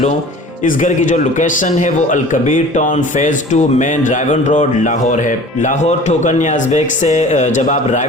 इस घर की जो लोकेशन है वो Al Kabir town phase 2 main रायवन road Lahore है। लाहौर ठोकर नियाज़बेग से जब आप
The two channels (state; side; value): normal; both; correlation 0.44